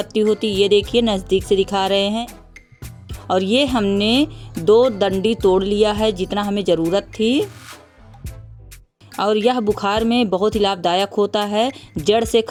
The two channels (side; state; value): both; identical; correlation 1.00